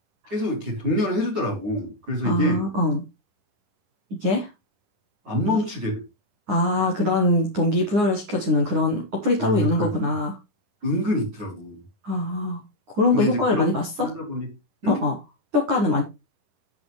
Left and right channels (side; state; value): left; late; 10 ms